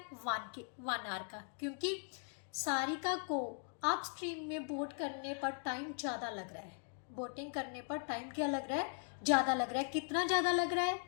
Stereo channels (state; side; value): silent; right; 52 dB below the other